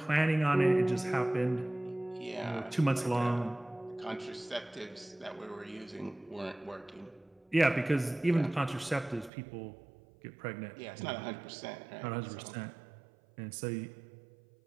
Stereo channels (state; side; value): drops out; left; at 9.3 s